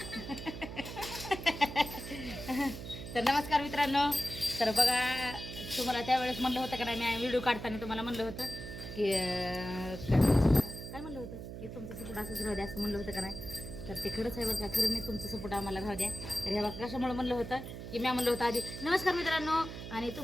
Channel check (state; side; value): noise; right; hum, 9 dB below the sound